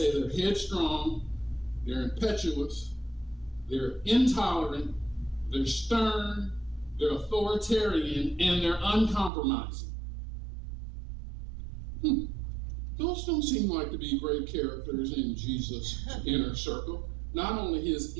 they're headstrong, they're impetuous, they're intolerant, they're stern, they're authoritarian, and they're uncompromising. Those don't seem like to be great characters in Jesus' inner circle. Not only his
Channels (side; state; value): left; drops out; at 9.3 s